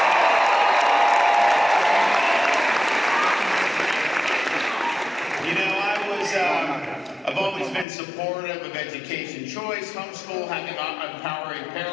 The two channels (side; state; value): right; drops out; at 7.9 s